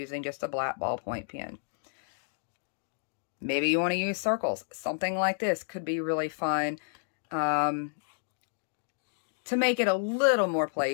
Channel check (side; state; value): right; silent; digital silence